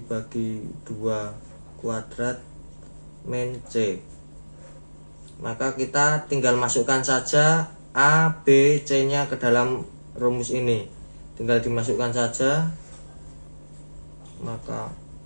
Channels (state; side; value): inverted; both; correlation -1.00